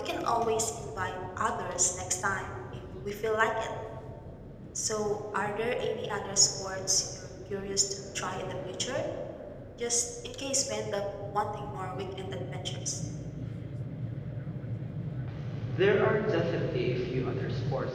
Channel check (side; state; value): both; identical; correlation 1.00